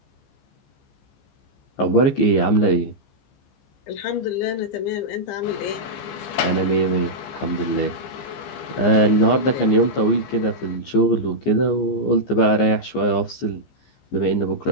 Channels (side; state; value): right; late; 15 ms